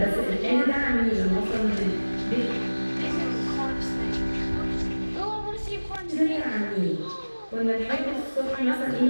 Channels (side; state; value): both; inverted; correlation -1.00